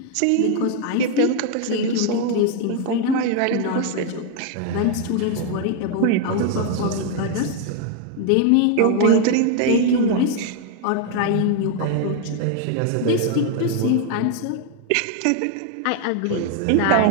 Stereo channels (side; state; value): both; different; correlation 0.00